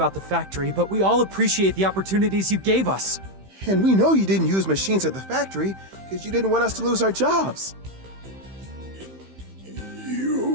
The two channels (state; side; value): late; left; 15 ms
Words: the factory, but we all appreciate the opportunities you gave us. And we know you didn't use machines at the factory because you didn't want us to lose our jobs.